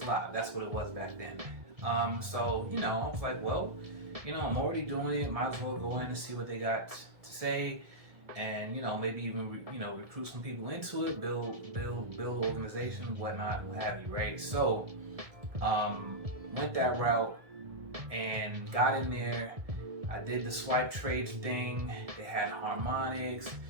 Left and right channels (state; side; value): late; left; 1.7 ms